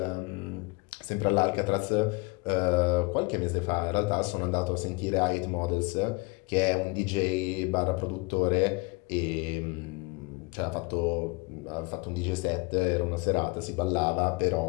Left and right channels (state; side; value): quieter; right; 27.3 dB